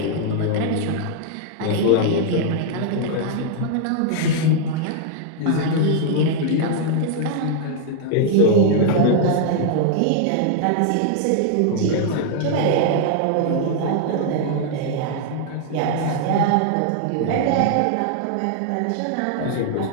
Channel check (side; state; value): both; different; correlation 0.00